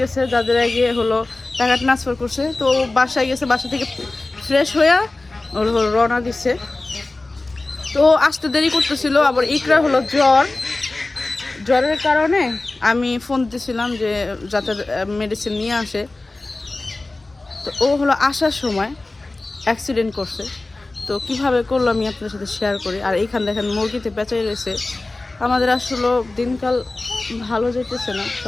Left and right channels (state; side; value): quieter; right; 3.1 dB